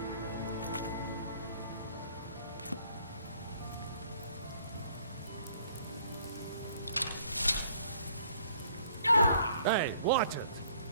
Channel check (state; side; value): inverted; both; correlation -0.60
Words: Hey, watch it!